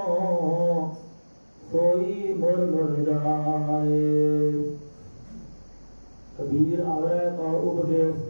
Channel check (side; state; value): both; inverted; correlation -1.00